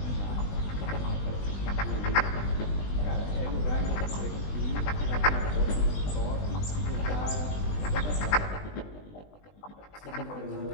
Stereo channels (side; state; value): right; late; 20 ms